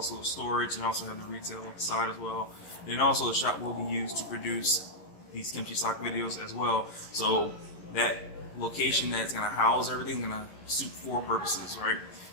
storage, and also have the retail side as well. And also the shop will be used to produce these Kimchi Sock videos as well. So that location that's gonna house everything gonna suit four purposes, right?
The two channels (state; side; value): late; right; 11 ms